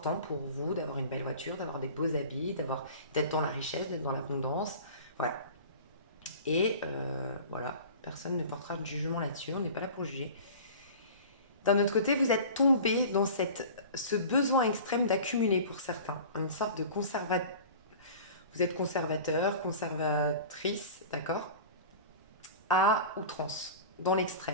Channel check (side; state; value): both; inverted; correlation -0.39